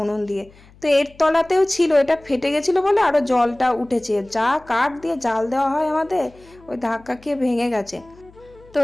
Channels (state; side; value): noise; left; hum, 26 dB below the sound